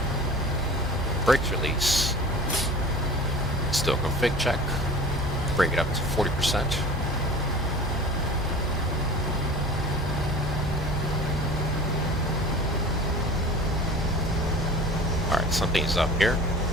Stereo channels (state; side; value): normal; both; correlation 0.39